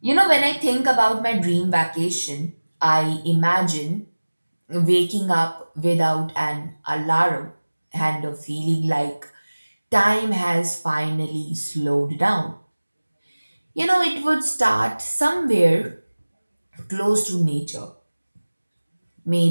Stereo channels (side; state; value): both; inverted; correlation -1.00